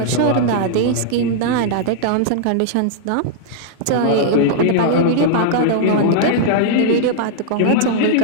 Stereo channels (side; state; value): both; different; correlation -0.01